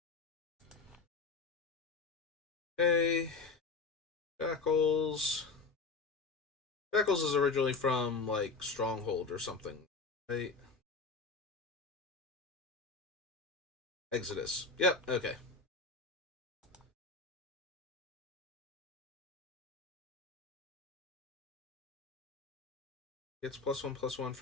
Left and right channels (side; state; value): right; quieter; 4.2 dB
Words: Okay. Shackles. Shackles is originally from, like, Stronghold or something, right? Exodus. Yep, okay. Gets +1/+1